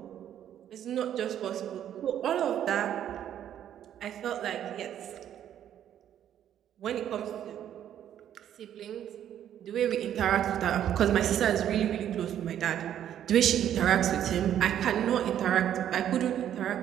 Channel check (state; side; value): quieter; left; 10.5 dB